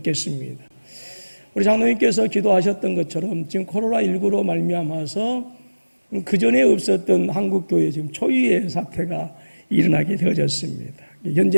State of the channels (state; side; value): inverted; both; correlation -1.00